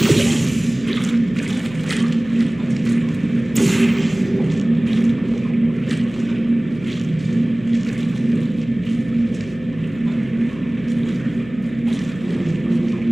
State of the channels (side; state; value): left; noise; hum, 18 dB below the sound